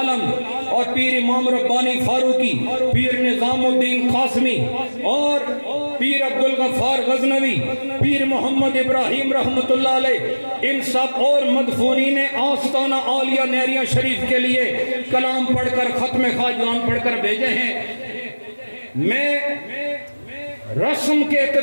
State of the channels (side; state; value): both; inverted; correlation -1.00